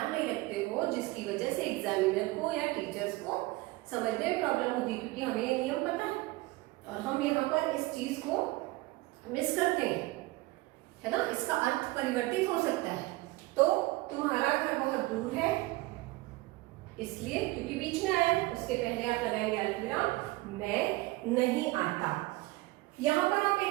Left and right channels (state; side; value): quieter; left; 20.8 dB